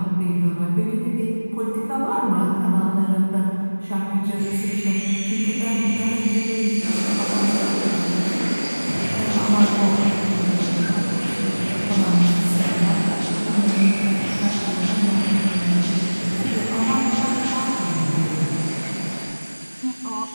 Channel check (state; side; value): inverted; both; correlation -1.00